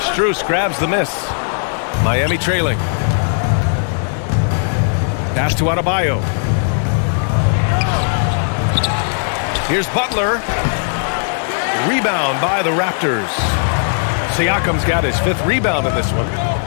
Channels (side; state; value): right; silent; 65 dB below the other